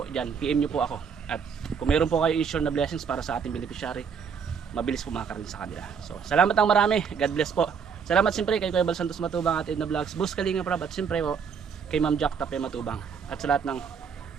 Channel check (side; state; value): left; quieter; 6.5 dB